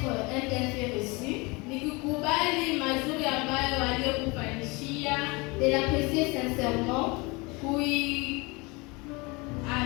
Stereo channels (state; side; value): quieter; right; 26.3 dB